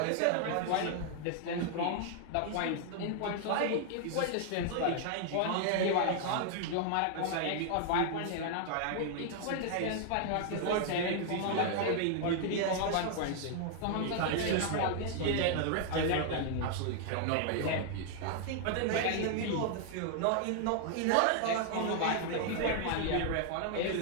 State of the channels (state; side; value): different; both; correlation 0.00